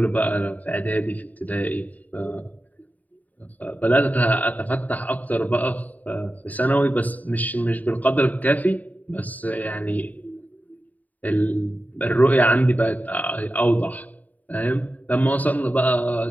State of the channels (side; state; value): right; late; 0.076 ms